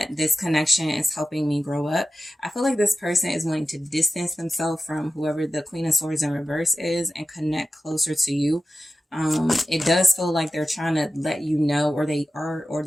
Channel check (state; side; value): normal; both; correlation 0.94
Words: this connection is helping me grow up. I feel like this person is wanting to distance themselves from whoever the Queen of Swords in reverse is and connect closer to you. It does feel like they're trying to let you know, or